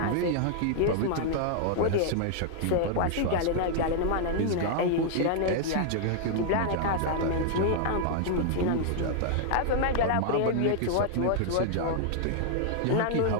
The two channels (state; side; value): different; both; correlation -0.01